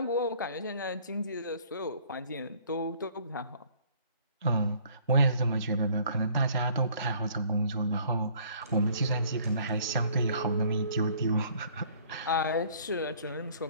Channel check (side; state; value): both; inverted; correlation -0.56